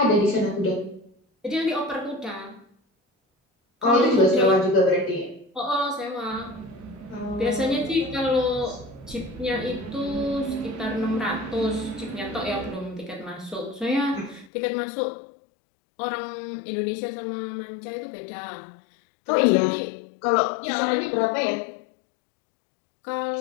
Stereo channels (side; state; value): right; drops out; at 14.5 s